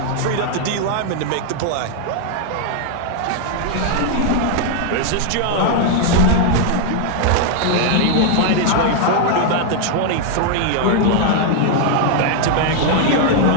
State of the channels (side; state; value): both; different; correlation 0.00